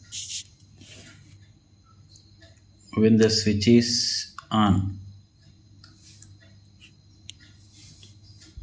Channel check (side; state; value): both; identical; correlation 1.00